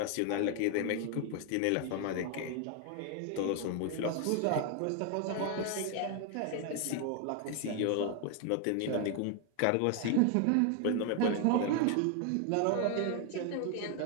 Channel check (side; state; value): both; different; correlation 0.00